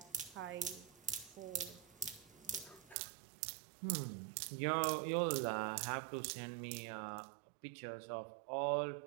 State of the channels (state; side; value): drops out; left; at 3.0 s